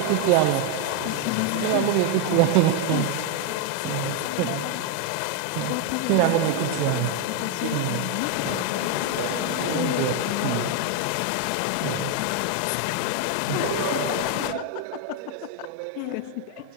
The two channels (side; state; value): both; different; correlation 0.01